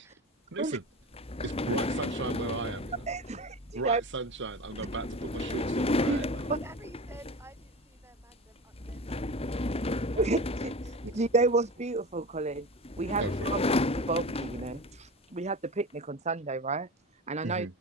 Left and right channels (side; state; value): both; normal; correlation 0.30